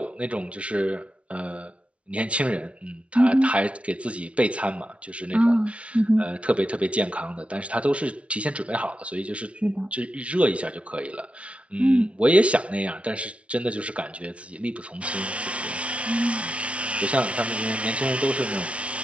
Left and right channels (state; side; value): late; left; 0.062 ms